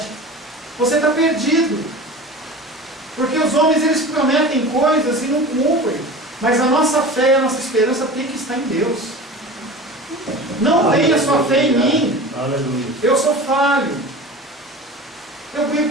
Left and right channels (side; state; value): both; normal; correlation 0.35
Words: você está perdido. Porque os homens, eles prometem coisas e não cumprem. Mas a nossa fé e a nossa esperança tem que estar em Deus. Não tenha sua fé em mim. Aleluia. Eu sou falho. Eu